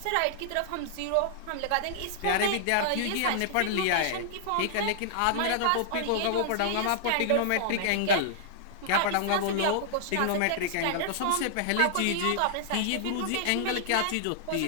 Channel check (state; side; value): different; both; correlation -0.01